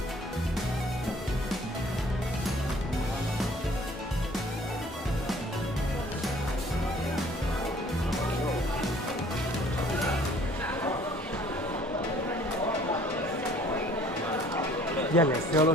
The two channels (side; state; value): both; normal; correlation 0.55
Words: Ya le solo